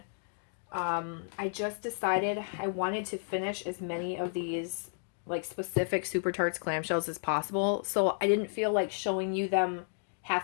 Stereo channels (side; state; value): right; silent; digital silence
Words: I just decided I wanted to finish as many of these like specific Super Tarts clamshells as possible. So I didn't feel like showing you them